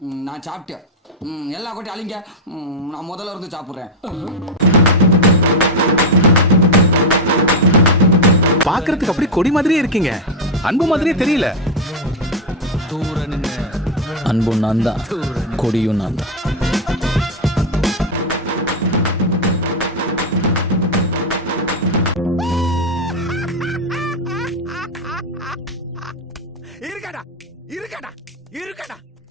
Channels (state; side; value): normal; both; correlation 0.05